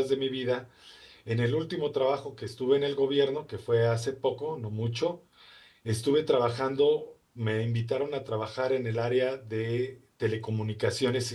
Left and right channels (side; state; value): both; identical; correlation 1.00